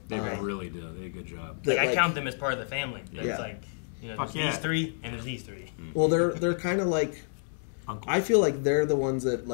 They really do. They did a good job. I count them as part of the family. It's like, there's these 3 and there's these 3. Well, they're kind of like, I feel like they're the ones that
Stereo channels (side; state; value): right; silent; digital silence